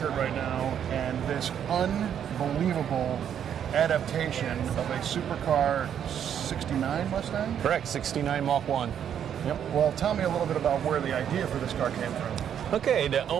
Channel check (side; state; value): left; quieter; 9.0 dB